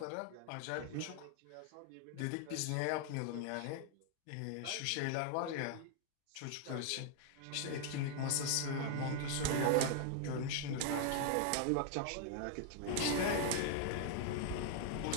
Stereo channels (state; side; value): different; both; correlation 0.00